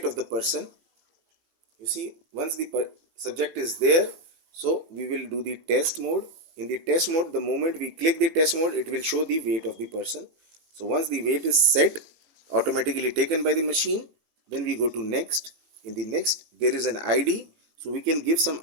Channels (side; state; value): left; late; 18 ms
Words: of the person. You see, once the subject is there, so we will do the test mode. In the test mode, the moment we click the test mode, it will show the weight of the person. So once the weight is set, automatically taken by the machine, then we go to next. In the next, there is an ID. So we can give some